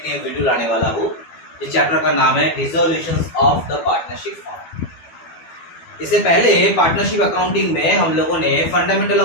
नई वीडियो लाने वाला हूँ। इस चैप्टर का नाम है resolutions of the partnership form. इससे पहले पार्टनरशिप अकाउंटिंग में हम लोगों ने फंडामेंटल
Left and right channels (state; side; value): late; right; 12 ms